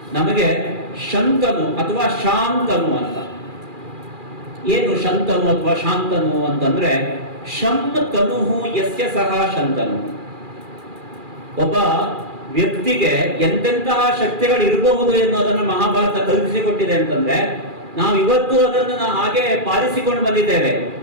ನಮಗೆ ಶಂತನು ಅಥವಾ ಶಾಂತನು ಅಂತ. ಏನು ಶಂತನು ಅಥವಾ ಶಾಂತನು ಅಂತಂದ್ರೆ ಶಂ ತನುಹು ಯಸ್ಯ ಸಹ ಶಂತನು. ಒಬ್ಬ ವ್ಯಕ್ತಿಗೆ ಎಂತೆಂತಹ ಶಕ್ತಿಗಳು ಇರಬಹುದು ಎನ್ನುವುದನ್ನು ಮಹಾಭಾರತ ಕಲ್ಪಿಸಿಕೊಟ್ಟಿದೆ ಅಂತಂದ್ರೆ ನಾವು ಇವತ್ತು ಅದನ್ನು ಹಾಗೆ ಪಾಲಿಸಿಕೊಂಡು ಬಂದಿದ್ದೇವೆ.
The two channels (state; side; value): late; left; 2.4 ms